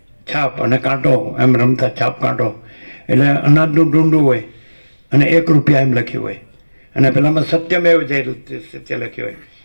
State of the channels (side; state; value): both; inverted; correlation -1.00